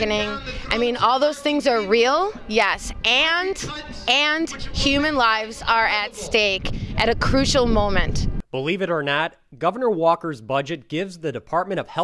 I mean, all those things are real, yes, and human lives are at stake at a crucial moment. Believe it or not, Governor Walker's budget gives the Department of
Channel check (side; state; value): both; identical; correlation 1.00